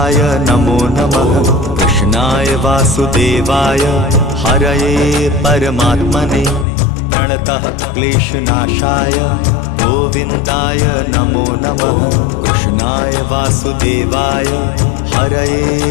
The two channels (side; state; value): right; drops out; at 6.7 s